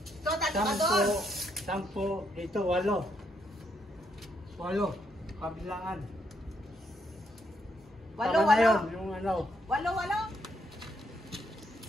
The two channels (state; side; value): normal; both; correlation 0.76